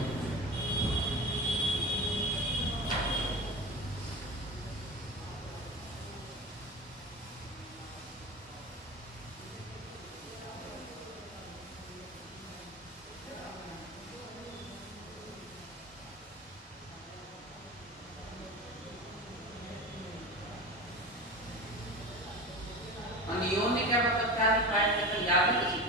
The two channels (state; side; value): normal; both; correlation 0.28